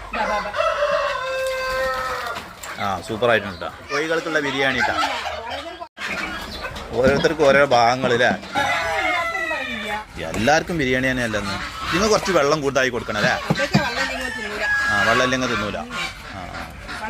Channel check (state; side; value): identical; both; correlation 1.00